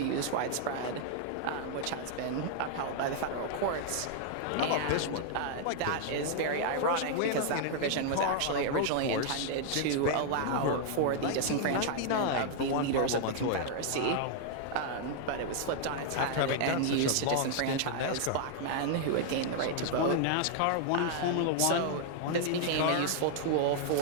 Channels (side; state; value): both; different; correlation -0.01